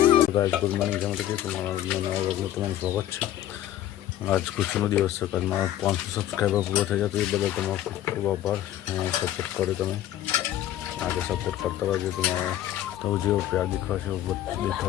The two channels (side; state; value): right; quieter; 12.7 dB